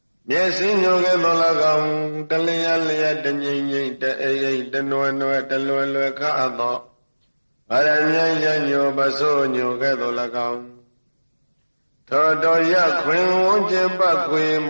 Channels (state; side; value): inverted; both; correlation -1.00